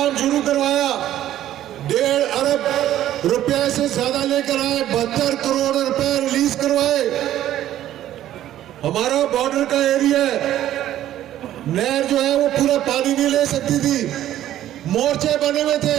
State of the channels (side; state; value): left; quieter; 12.6 dB